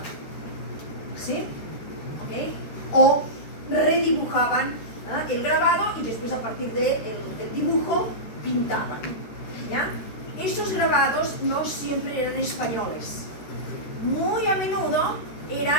¿sí? ¿Okay? O redibujaban el grabado y después a partir del dibujo pintaban, ¿ya? Esos grabados no siempre eran españoles, muy a menudo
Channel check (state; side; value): late; right; 13 ms